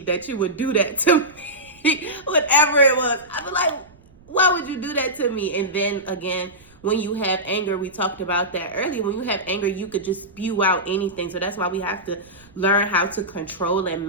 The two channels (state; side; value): noise; right; rumble, 27 dB below the sound